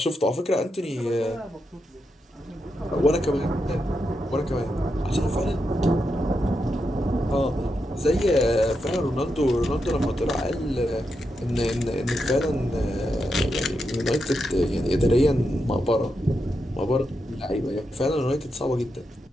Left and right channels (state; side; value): normal; both; correlation 0.85